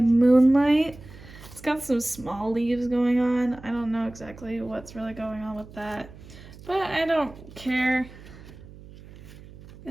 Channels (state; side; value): noise; right; hum, 19 dB below the sound